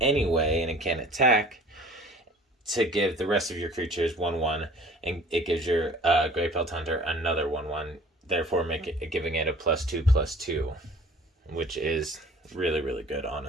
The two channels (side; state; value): both; normal; correlation 0.48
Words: anyway, and it can't attack, to give the rest of your creatures 1/1, and it gives your Grey Pelt Hunter another 1/1, therefore giving it a +2/+2, which is really, really good,